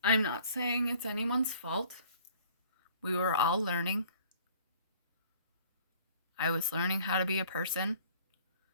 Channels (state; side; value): inverted; both; correlation -0.54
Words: I'm not saying it's anyone's fault. We were all learning. I was learning how to be a person,